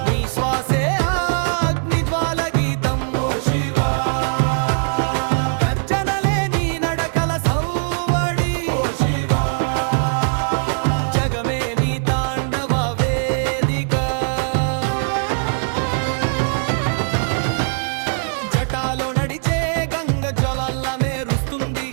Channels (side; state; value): left; silent; digital silence